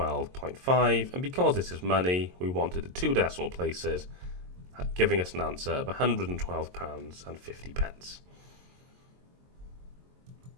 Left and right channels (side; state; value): left; late; 22 ms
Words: and because this is money, we wanted the two decimal places, giving us an answer of £112.50.